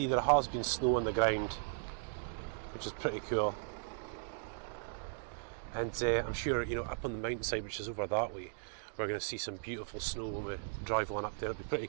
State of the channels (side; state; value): left; silent; digital silence